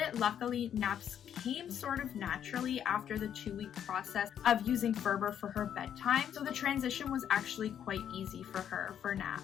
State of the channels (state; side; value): quieter; right; 9.3 dB